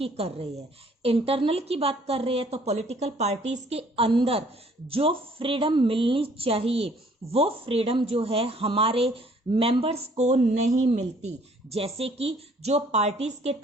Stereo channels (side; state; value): both; normal; correlation 0.59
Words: कर रहे हैं। इंटरनल की बात कर रहे हैं तो पॉलिटिकल पार्टीज के अंदर जो फ्रीडम मिलनी चाहिए वो फ्रीडम जो है हमारे मेंबर्स को नहीं मिलती। जैसे कि जो पार्टीज के